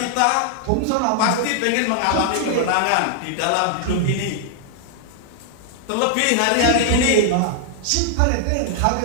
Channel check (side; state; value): both; different; correlation 0.00